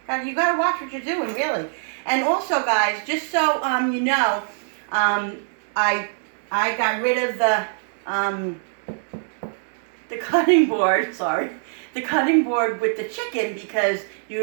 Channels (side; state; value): left; silent; digital silence